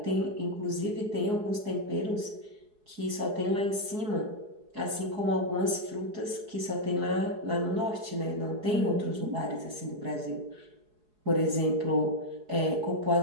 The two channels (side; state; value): left; late; 4.7 ms